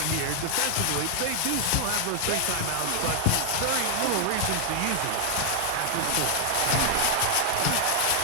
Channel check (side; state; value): both; different; correlation 0.00